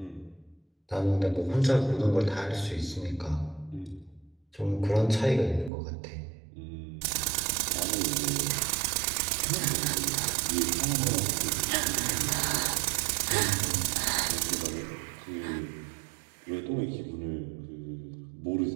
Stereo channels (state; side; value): drops out; left; at 5.7 s